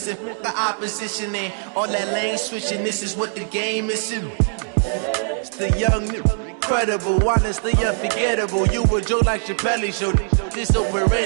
the opposition in. All that lane switching, this is what the game is. It's the young, incredible, honestly unforgettable. You a joke like Chappelle show. This so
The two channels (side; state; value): left; silent; digital silence